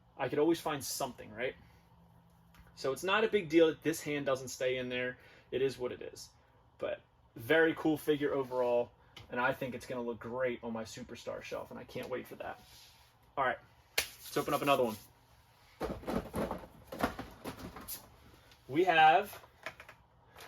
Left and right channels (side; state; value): both; identical; correlation 1.00